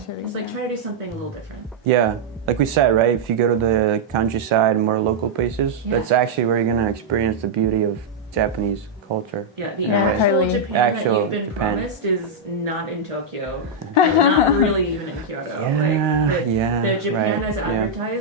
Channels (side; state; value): left; quieter; 3.2 dB